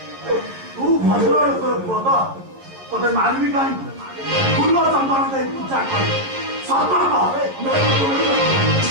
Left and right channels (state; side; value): late; left; 11 ms